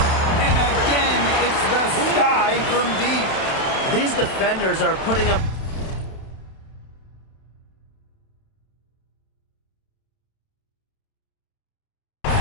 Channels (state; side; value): late; right; 31 ms